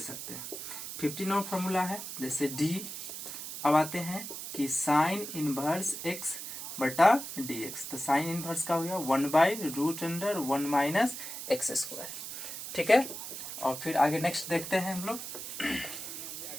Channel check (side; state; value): right; noise; hiss, 8 dB below the sound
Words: हैं। 15 नंबर फॉर्मूला है जैसे d, अब आते हैं कि साइन इनवर्स x बटा dx, तो साइन इनवर्स का हो गया 1/√1 माइनस एक्स स्क्वायर। ठीक है, और फिर आगे नेक्स्ट देखते हैं हम लोग।